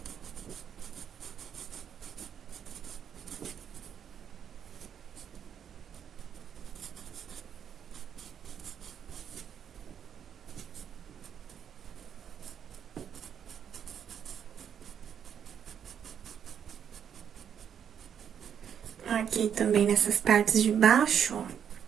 Aqui também nessas partes de baixo, ó.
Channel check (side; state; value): left; quieter; 8.3 dB